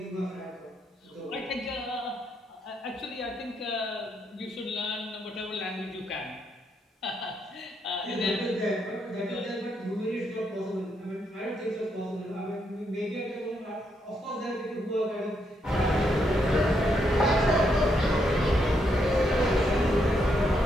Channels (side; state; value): both; normal; correlation 0.78